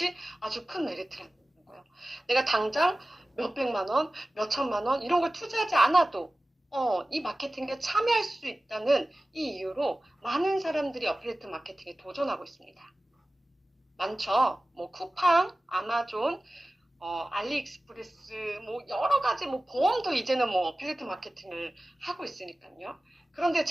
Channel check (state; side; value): normal; both; correlation 0.97